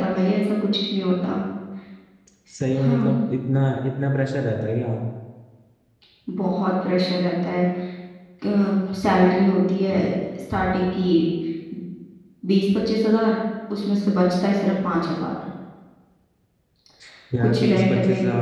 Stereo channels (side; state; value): both; identical; correlation 1.00